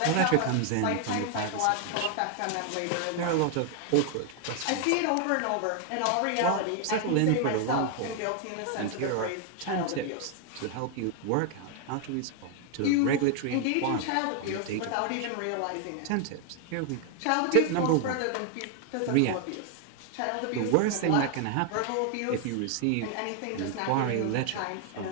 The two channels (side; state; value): both; different; correlation 0.00